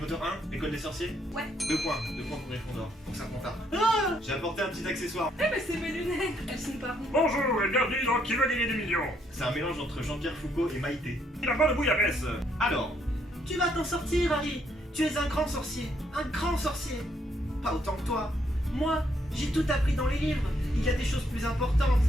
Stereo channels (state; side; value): normal; both; correlation 0.72